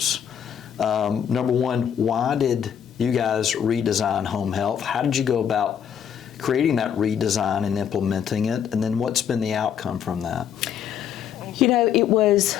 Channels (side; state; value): right; quieter; 8.6 dB